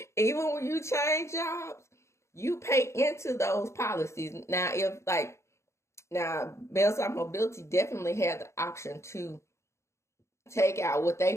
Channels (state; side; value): late; right; 0.14 ms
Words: Even when you change jobs, you pay into those policies. Now, Bell South Mobility definitely had the option to take out what